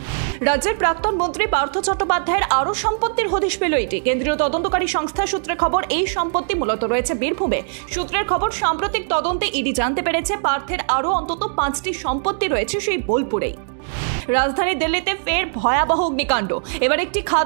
রাজ্যের প্রাক্তন মন্ত্রী পার্থ চট্টোপাধ্যায়ের আরও সম্পত্তির হদিশ পেল এটি। কেন্দ্রীয় তদন্তকারী সংস্থা সূত্রে খবর, এই সম্পত্তি মূলত রয়েছে বীরভূমে। সূত্রের খবর, সাম্প্রতিক তদন্তে ইডি জানতে পেরেছে পার্থের আরও অন্তত 5টি সম্পত্তি রয়েছে সেই বোলপুরেই। রাজধানী দিল্লিতে ফের ভয়াবহ অগ্নিকাণ্ড। এবার একটি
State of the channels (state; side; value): silent; left; digital silence